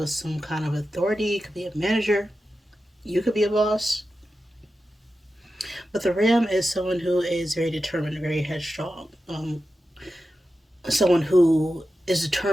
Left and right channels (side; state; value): both; normal; correlation 0.92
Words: some kind of authority. It could be a manager. You could be a boss. But the ram is someone who is very determined, very headstrong. Someone who is